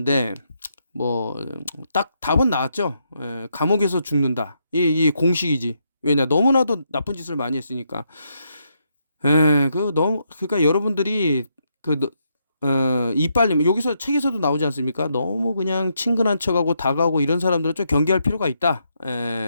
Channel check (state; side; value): inverted; both; correlation -0.79